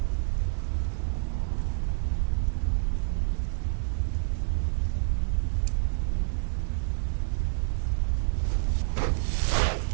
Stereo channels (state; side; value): silent; left; digital silence